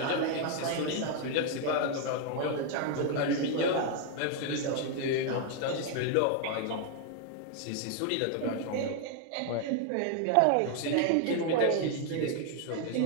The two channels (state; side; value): different; both; correlation 0.00